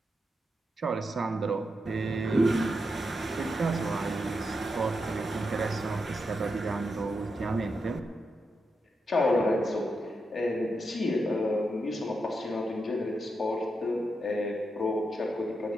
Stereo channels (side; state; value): both; normal; correlation 0.85